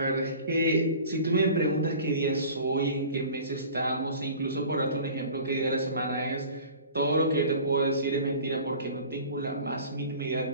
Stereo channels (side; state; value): both; inverted; correlation -0.42